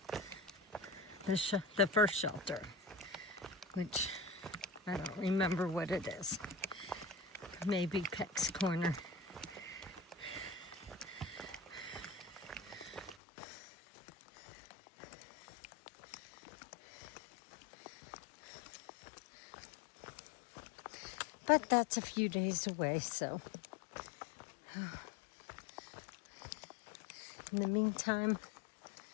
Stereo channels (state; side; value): drops out; right; at 13.2 s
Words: the first shelter, which I don't remember what it is. Maybe Peck's Corner. But that's a few days away, so in the meantime,